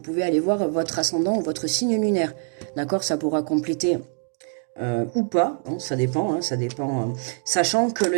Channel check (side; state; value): left; silent; 58 dB below the other